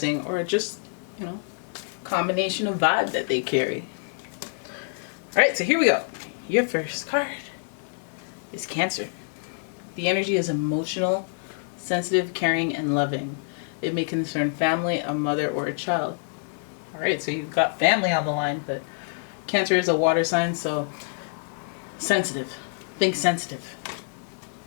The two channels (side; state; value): right; silent; digital silence